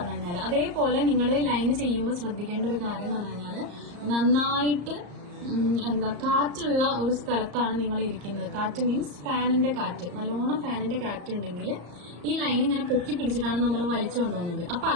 കഴിഞ്ഞാൽ. അതേപോലെ നിങ്ങൾ ലൈന് ചെയ്യുമ്പോൾ ശ്രദ്ധിക്കേണ്ട ഒരു കാര്യം എന്ന് പറഞ്ഞു കഴിഞ്ഞാൽ നന്നായിട്ട് എന്താ കാറ്റുള്ള ഒരു സ്ഥലത്താണ് നിങ്ങൾ ഇരിക്കുന്നത്. കാറ്റ് മീൻസ് ഫാനിന്റെ കാറ്റ്, നല്ലോണം ഫാനിന്റെ കാറ്റ് ഉണ്ടെങ്കിൽ ഈ ലൈൻ ഇങ്ങനെ പൊക്കി പിടിച്ചിട്ടാണ് നമ്മൾ വലിച്ചു കൊണ്ടുവന്നത്. അപ്പൊ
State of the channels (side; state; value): left; late; 34 ms